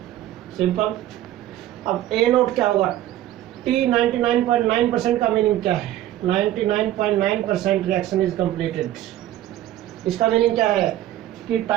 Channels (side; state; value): left; quieter; 13.5 dB